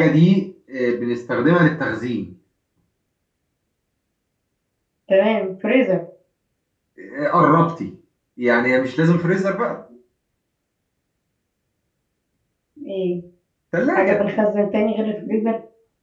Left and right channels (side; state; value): both; identical; correlation 1.00